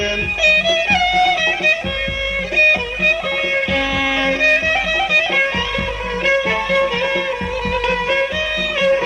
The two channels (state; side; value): identical; both; correlation 1.00